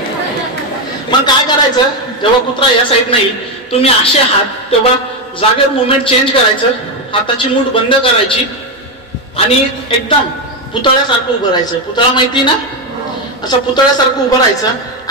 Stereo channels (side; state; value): both; normal; correlation 0.08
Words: मग काय करायचं? जेव्हा कुत्रा या साईड नाही, तुम्ही असे हात, तेव्हा जागेवर मुवमेंट चेंज करायचं, हाताची मूठ बंद करायची आणि एकदम पुतळ्यासारखं उभं राहायचं. पुतळा माहिती ना? असं पुतळ्यासारखं उभं राहायचं